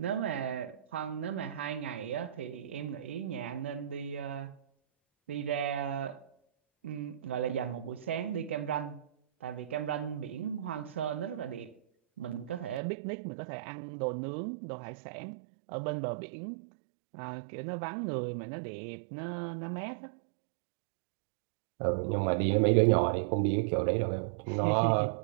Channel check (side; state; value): left; drops out; at 12.8 s